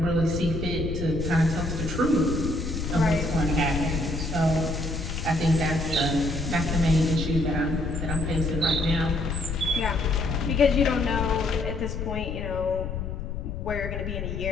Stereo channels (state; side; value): noise; left; rumble, 5 dB below the sound